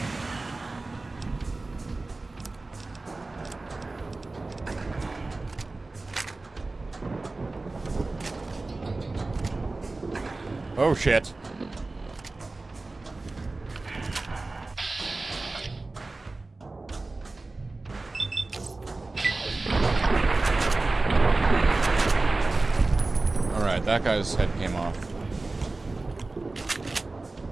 Oh, shit. Alright, that guy's head came off.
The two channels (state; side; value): quieter; left; 3.3 dB